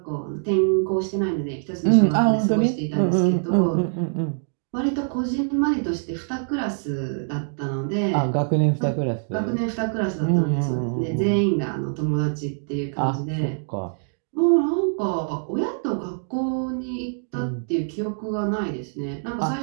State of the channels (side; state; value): left; silent; digital silence